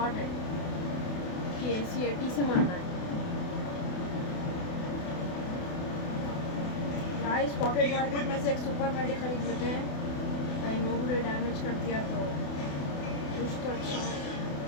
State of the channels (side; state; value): right; late; 28 ms